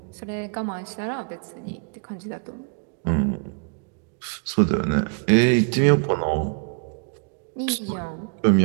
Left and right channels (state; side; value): quieter; left; 38.7 dB